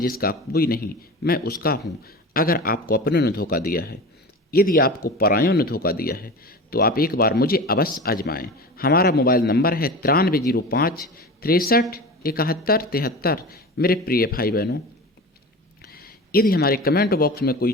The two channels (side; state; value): both; normal; correlation 0.32